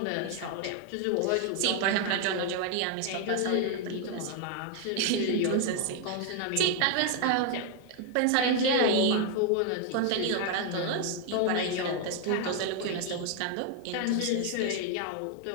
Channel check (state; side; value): different; both; correlation 0.00